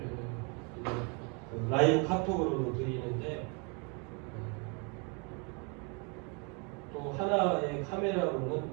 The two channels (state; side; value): quieter; left; 34.1 dB